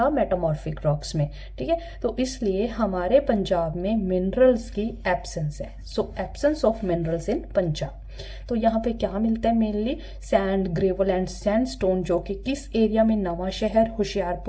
मेटामॉर्फिक रॉक्स में। ठीक है, तो इसलिए हमारे पंजाब में मिनरल्स की एब्सेंस है। So absence of minerals in Punjab. तो यहाँ पे क्या मिलता है? Mainly sand, gravel and sandstone, जो कि किस एरिया में? नवा शहर,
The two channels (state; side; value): identical; both; correlation 1.00